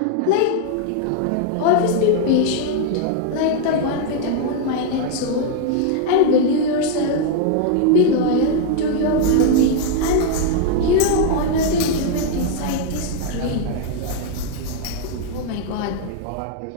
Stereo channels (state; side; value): different; both; correlation 0.00